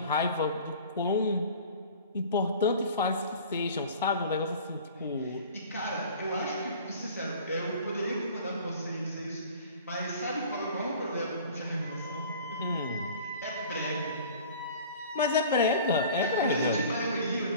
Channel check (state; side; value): inverted; both; correlation -0.44